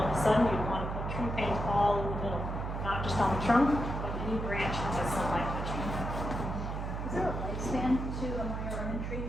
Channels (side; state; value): right; noise; hum, 4 dB below the sound